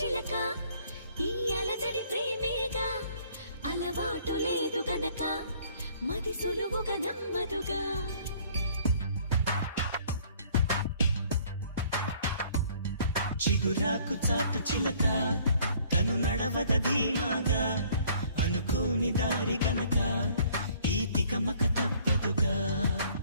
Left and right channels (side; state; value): both; inverted; correlation -0.58